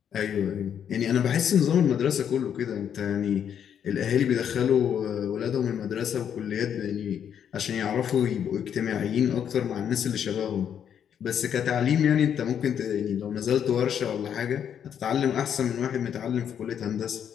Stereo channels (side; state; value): right; quieter; 8.7 dB